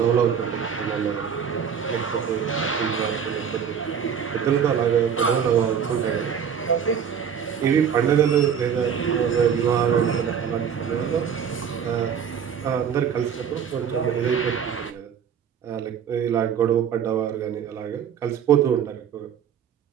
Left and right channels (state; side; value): quieter; left; 7.7 dB